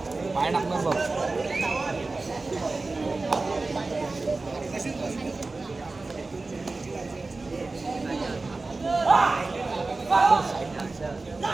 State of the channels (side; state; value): left; quieter; 3.5 dB